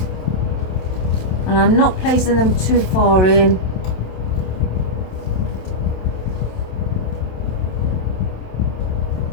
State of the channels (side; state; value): right; late; 27 ms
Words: and I'm not placing them too far in.